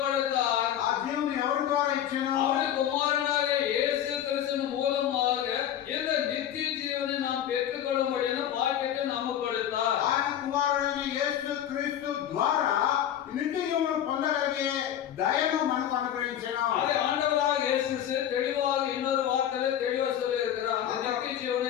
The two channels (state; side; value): quieter; right; 10.5 dB